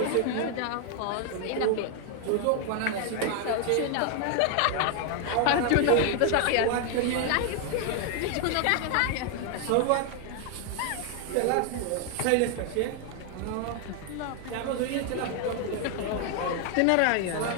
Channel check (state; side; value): different; both; correlation 0.00